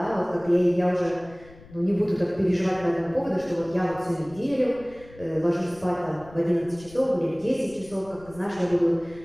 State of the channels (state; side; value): noise; left; rumble, 22 dB below the sound